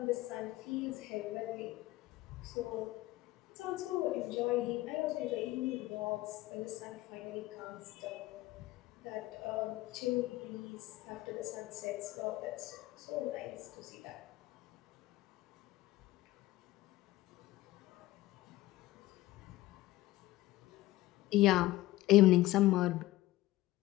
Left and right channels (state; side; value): quieter; right; 17.2 dB